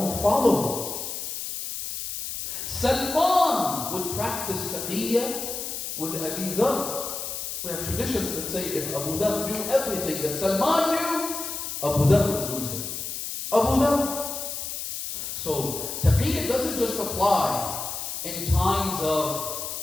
followers. Salman would practice taqiyya with Abi Dhar, We have traditions that say if Abu Dhar knew everything that Salman knew, Abu Dhar would lose him. Abu Dhar. So, taqiyya doesn't just apply in times of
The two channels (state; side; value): noise; left; hiss, 5 dB below the sound